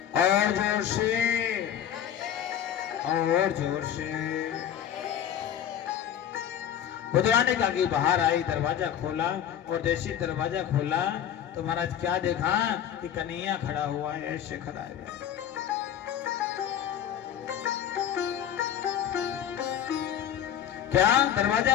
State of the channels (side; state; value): right; quieter; 9.9 dB